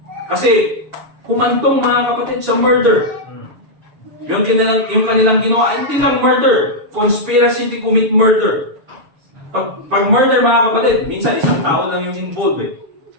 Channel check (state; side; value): late; left; 7.0 ms